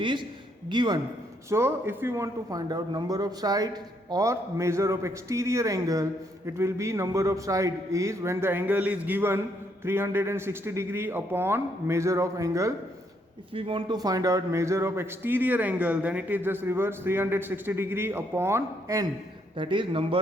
given. So if you want to find out number of sides or measure of exterior angle, it will be number of side is when the angle is given 360 degree upon measure of angle. If we want to find out measure of exterior angle, then it is just reverse, 360 degree upon n, that is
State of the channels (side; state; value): both; normal; correlation 0.73